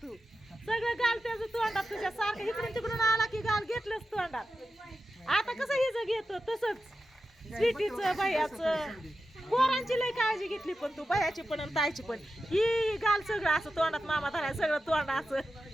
तू, सगळं गाल त्याचं तोंडात तुझ्या सारखं. इकडून तिकडून आला की गाल घेतलंच तोंडात. आता कसं हिचं घेतो तसंच स्वीटीचं, भैयाचं. पोरांची लय काळजी घेतली पण तू, भैयाची पण आणि ताईची पण. ही गाल सगळं असं तोंडात मामा धराय, सगळं तोंडाचं.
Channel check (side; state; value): both; normal; correlation 0.91